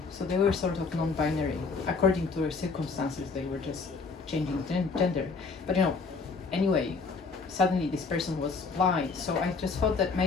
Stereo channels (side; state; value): right; quieter; 4.5 dB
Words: so they were sort of non-binary. According to their circumstances, they were just changing gender. But anyway, suddenly this person was blind, so I just thought that